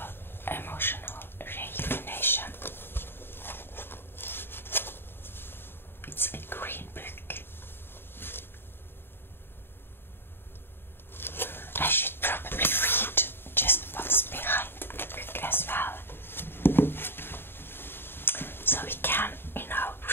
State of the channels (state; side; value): late; right; 0.11 ms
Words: Emotional Rejuvenation. It's a green book. I should probably read just what's behind the book as well, so we can,